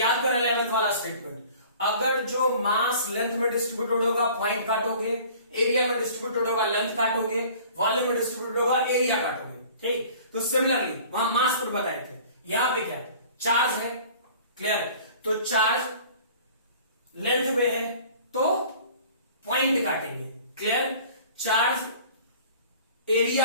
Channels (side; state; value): both; inverted; correlation -0.48